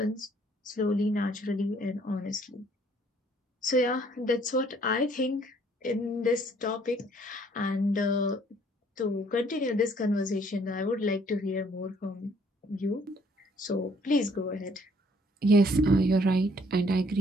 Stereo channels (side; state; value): both; normal; correlation 0.62